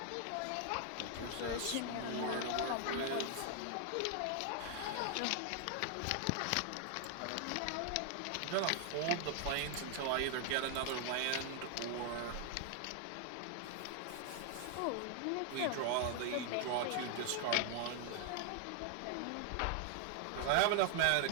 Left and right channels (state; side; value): different; both; correlation 0.00